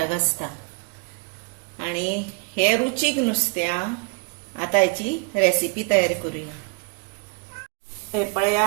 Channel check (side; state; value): left; quieter; 34.2 dB